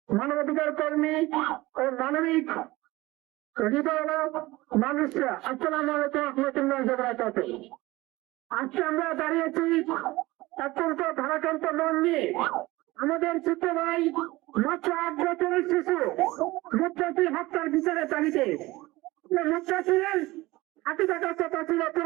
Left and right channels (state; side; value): quieter; left; 19.7 dB